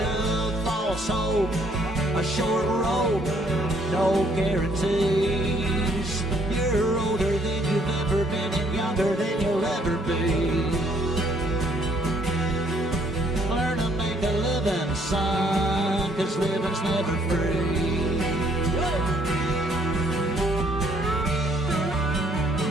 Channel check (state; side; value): normal; both; correlation 0.65